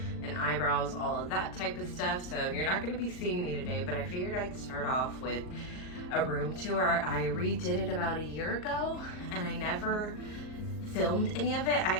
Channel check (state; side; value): late; right; 39 ms